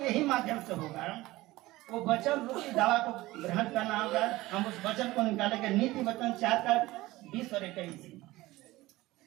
ही माध्यम से होगा। वो वचन रूपी दवा को ग्रहण करना होगा। हम उस वचन को निकालेंगे। नीति वचन 4:20 और 21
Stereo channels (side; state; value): left; quieter; 18.5 dB